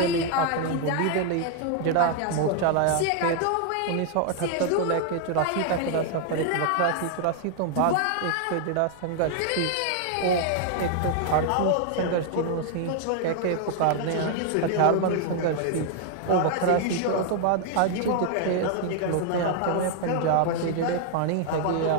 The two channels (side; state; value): both; different; correlation 0.00